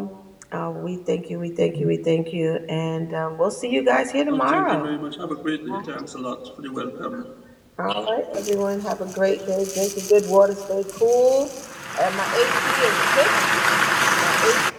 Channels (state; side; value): identical; both; correlation 1.00